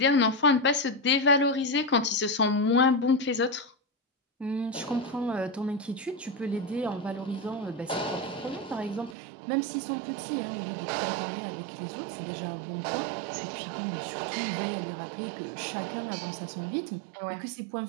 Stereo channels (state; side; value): drops out; left; at 9.2 s